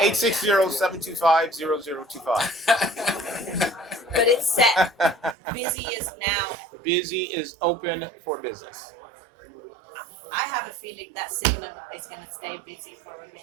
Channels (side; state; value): left; drops out; at 5.4 s